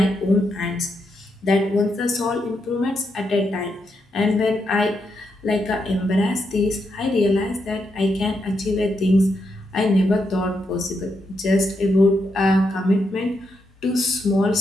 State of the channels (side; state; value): both; normal; correlation 0.82